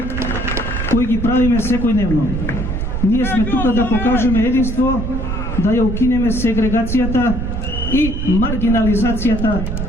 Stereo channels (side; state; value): right; noise; rumble, 3 dB below the sound